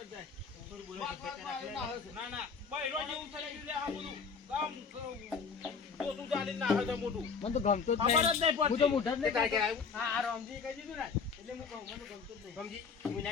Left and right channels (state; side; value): quieter; right; 5.5 dB